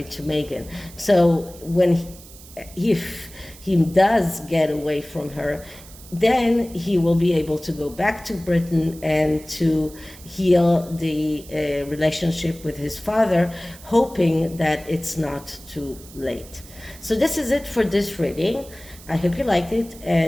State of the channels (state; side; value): noise; right; hiss, 20 dB below the sound